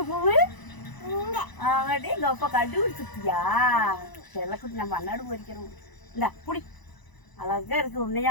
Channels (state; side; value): late; right; 1.0 ms